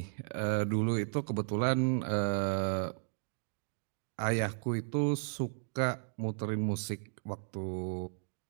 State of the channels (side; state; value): left; silent; digital silence